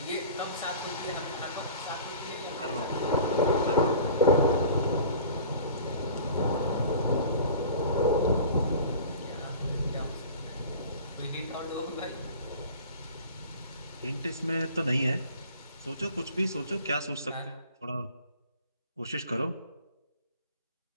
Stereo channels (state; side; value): inverted; both; correlation -0.43